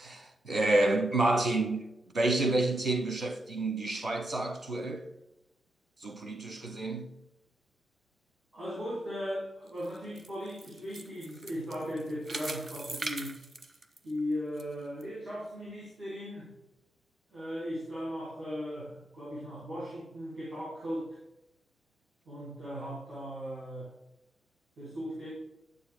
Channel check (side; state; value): both; normal; correlation 0.83